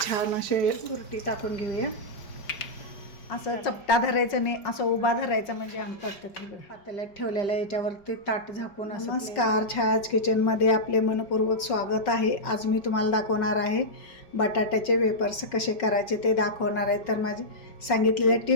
असे तुरटी टाकून घेऊया. असं चपटा धरायचं नाही, असं उभा धरायचं म्हणजे आमचं पातेल्यात ठेवलेलं याच्यावरती ताट झाकून असं. नमस्कार, छायाज किचनमध्ये आपले मनपूर्वक स्वागत आहे. आज मी तुम्हाला दाखवणार आहे बटाट्याचे वेपर्स कसे करायचे ते दाखवणार आहे. तर माझे सांगितलेल्या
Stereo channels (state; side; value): late; right; 5.4 ms